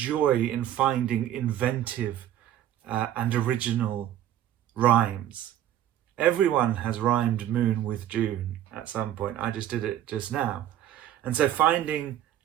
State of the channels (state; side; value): quieter; left; 11.8 dB